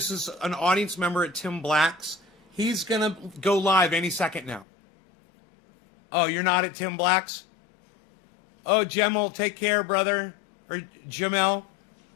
audience member at Tim Black's. He's gonna go live any second now. Oh, you're not at Tim Black's? Oh, Jamel, take care, brother. Or Jamel.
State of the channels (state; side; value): drops out; right; at 4.7 s